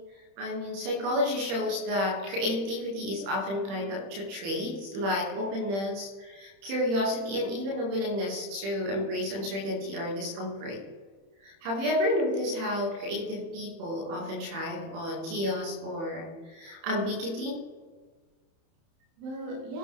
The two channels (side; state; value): left; late; 31 ms